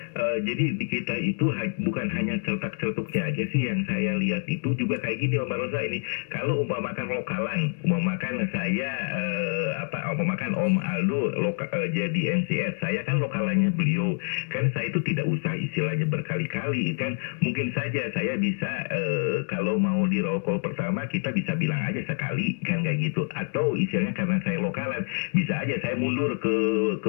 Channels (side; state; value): right; silent; digital silence